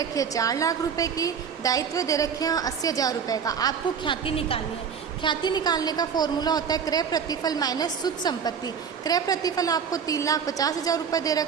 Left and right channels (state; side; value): quieter; left; 6.9 dB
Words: है 4 लाख रुपए की, दायित्व दे रखे हैं 80,000 रुपये का। आपको ख्याति निकालनी है। ख्याति निकालने का फॉर्मूला होता है क्रय प्रतिफल माइनस शुद्ध संपत्ति। क्रय प्रतिफल आपको 3,50,000 रुपये दे